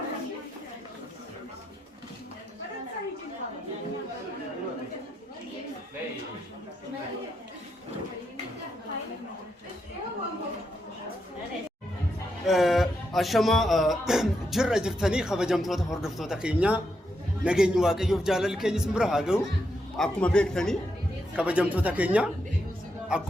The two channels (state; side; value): normal; both; correlation 0.82